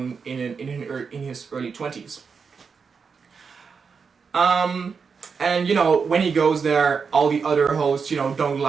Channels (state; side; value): quieter; left; 5.6 dB